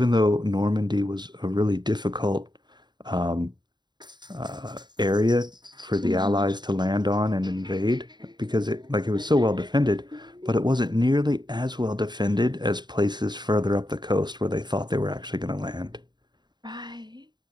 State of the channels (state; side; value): late; left; 0.21 ms